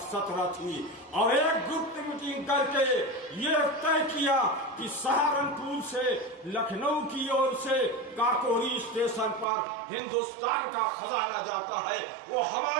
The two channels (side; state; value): left; drops out; at 9.5 s